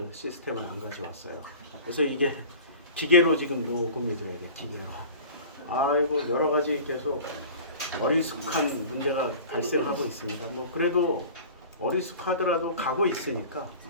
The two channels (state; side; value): inverted; both; correlation -0.40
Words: 시스템을 안 가져왔어요. 그래서 이게 기계로 지금 녹음이 돼야 돼, 기계로. 아이고 여러 가지 계속 어리숙한 문제가 발생하고 있습니다. 뭐 그래도 어리숙하더라도 가고 있으니까